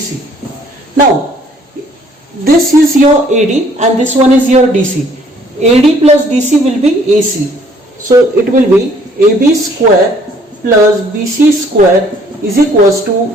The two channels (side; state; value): both; normal; correlation 0.60